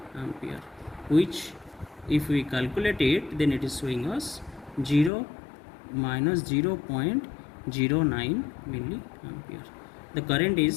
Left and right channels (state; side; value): drops out; right; at 5.1 s